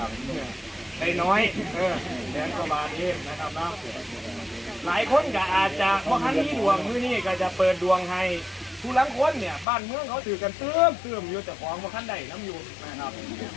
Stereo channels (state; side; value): drops out; right; at 9.7 s